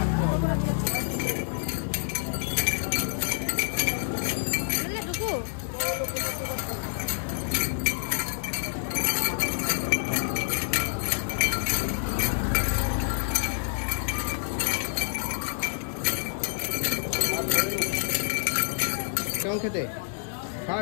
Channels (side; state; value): right; silent; digital silence